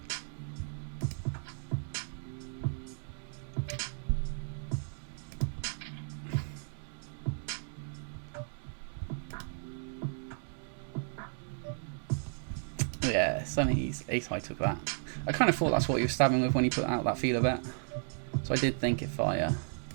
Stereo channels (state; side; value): silent; left; digital silence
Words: Yeah, Sonny's ace high took that. I kind of thought that's what he was stabbing with when he put out that feeler bet. So I did think if I